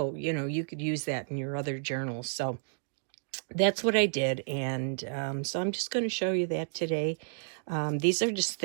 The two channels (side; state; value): left; silent; digital silence